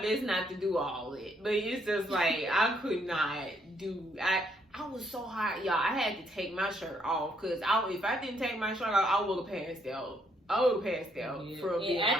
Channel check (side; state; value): both; normal; correlation 0.72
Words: best not to do all it. But it's just like, I could not do, I was so hot, y'all. I had to take my shirt off, because if I didn't take my shirt off, I would have passed out. I would have passed out for a bit.